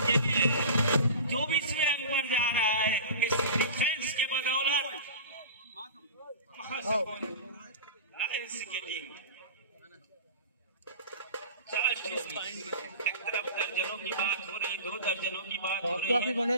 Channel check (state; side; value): inverted; both; correlation -0.35